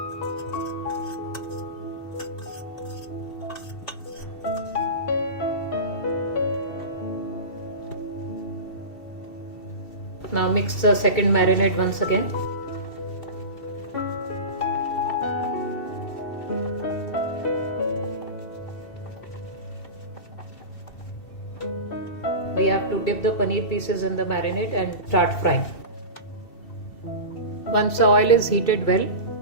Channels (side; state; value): right; late; 2.7 ms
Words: Now mix the second marinade once again. We have to dip the paneer pieces in the marinade and start frying. Once the oil is heated well,